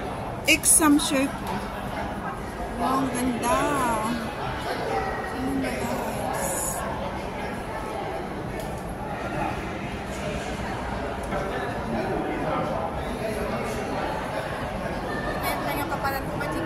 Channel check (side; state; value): both; identical; correlation 1.00